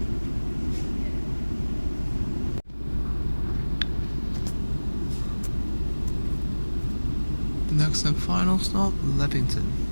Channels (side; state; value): both; inverted; correlation -1.00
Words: Next and final stop, Leppington.